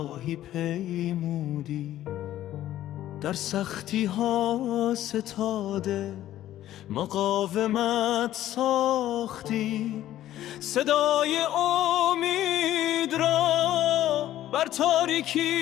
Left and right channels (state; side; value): quieter; right; 13.2 dB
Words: پیمودی، در سختی ها ستاده مقاومت ساختی، صدای امید را بر